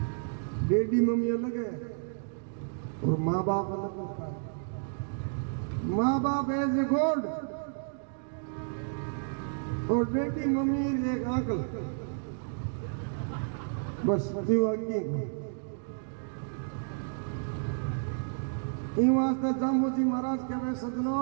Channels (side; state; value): left; silent; digital silence